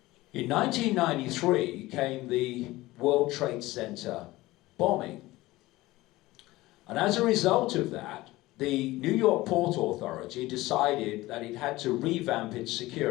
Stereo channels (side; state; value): right; quieter; 18.6 dB